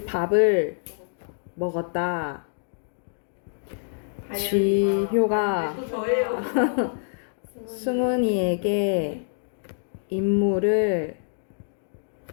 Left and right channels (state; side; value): silent; right; digital silence